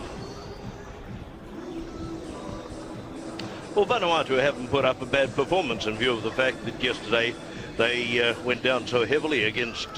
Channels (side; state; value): both; identical; correlation 1.00